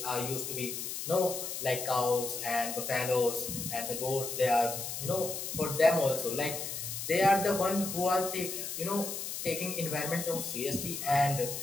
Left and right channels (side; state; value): left; noise; hiss, 5 dB below the sound